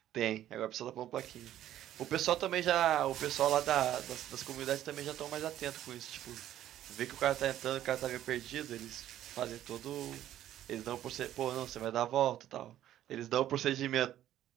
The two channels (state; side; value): quieter; left; 12.3 dB